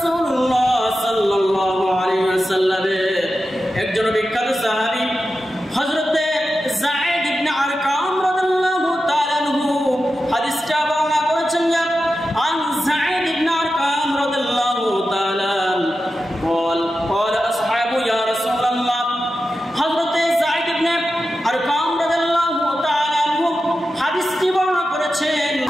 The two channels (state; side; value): normal; both; correlation 0.91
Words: সাল্লাল্লাহু আলাইহি ওয়াসাল্লামের একজন বিখ্যাত সাহাবী হযরত যায়েদ ইবনে আরকাম রাদিয়াল্লাহু তাআলা আনহু হাদিসটা বর্ণনা করেছেন। আন যায়েদ ইবনে আরকাম রাদিয়াল্লাহু তাআলা قال اصحاب يا رسول الله হযরত যায়েদ ইবনে আরকাম রাদিয়াল্লাহু তাআলা আনহু হাদিসটি বর্ণনা করেছেন।